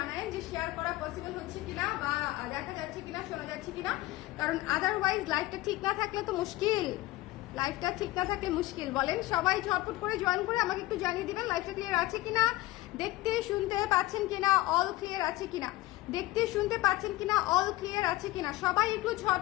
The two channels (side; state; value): right; quieter; 18.2 dB